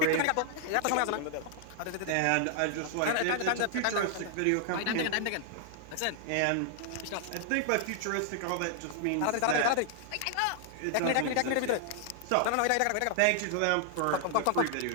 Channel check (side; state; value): both; different; correlation 0.00